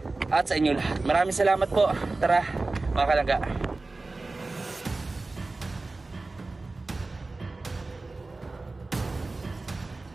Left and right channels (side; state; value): left; quieter; 3.4 dB